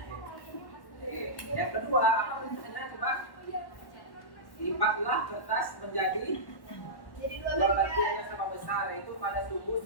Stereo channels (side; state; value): right; late; 1.1 ms